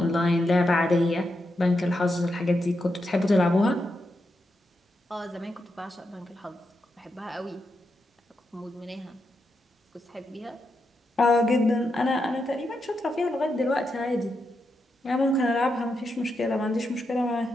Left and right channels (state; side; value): normal; both; correlation 0.85